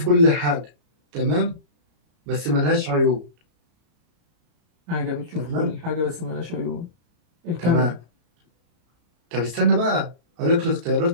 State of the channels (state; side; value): late; left; 34 ms